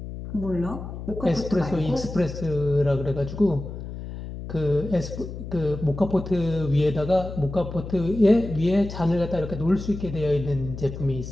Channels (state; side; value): noise; left; hum, 9 dB below the sound